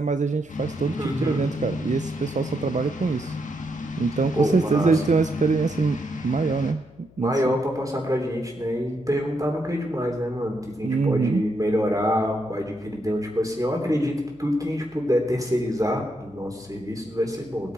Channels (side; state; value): left; noise; hum, 25 dB below the sound